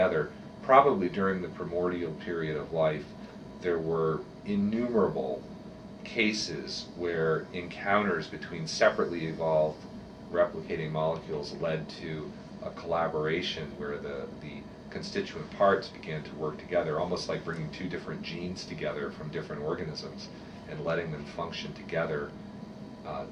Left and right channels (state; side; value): identical; both; correlation 1.00